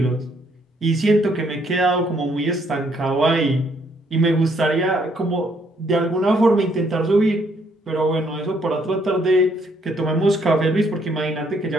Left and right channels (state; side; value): normal; both; correlation 0.69